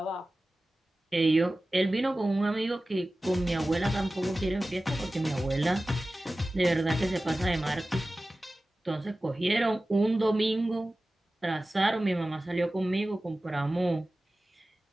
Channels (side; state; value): both; normal; correlation 0.96